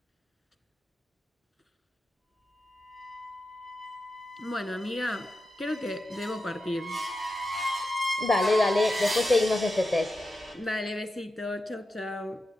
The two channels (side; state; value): both; normal; correlation 0.90